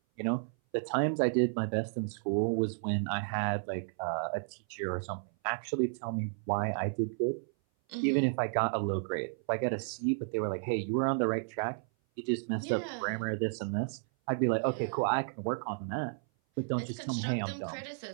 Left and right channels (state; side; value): silent; left; 56 dB below the other